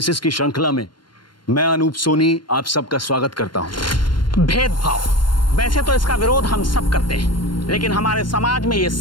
की श्रृंखला में मैं अनूप सोनी आप सबका स्वागत करता हूं। भेदभाव, वैसे तो इसका विरोध हम सब करते हैं, लेकिन हमारे समाज में ये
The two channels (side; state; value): right; late; 0.72 ms